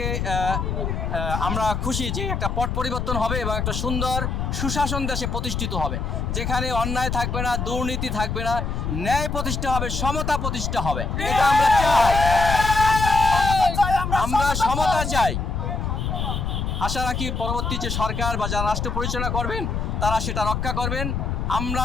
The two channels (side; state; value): left; noise; rumble, 2 dB below the sound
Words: আমরা খুশি যে একটা পট পরিবর্তন হবে এবং একটা সুন্দর সুশাসন দেশে প্রতিষ্ঠিত হবে, যেখানে অন্যায় থাকবে না, দুর্নীতি থাকবে না, ন্যায় প্রতিষ্ঠা হবে, সমতা প্রতিষ্ঠা হবে। এটা আমরা চাই, আমরা সমতা চাই। আশা রাখি পরবর্তী যে সরকার বা যারা রাষ্ট্র পরিচালনা করবেন তারা সেটা রক্ষা করবেন। আমরা